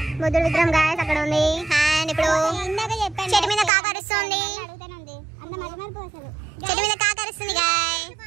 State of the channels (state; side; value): drops out; left; at 3.7 s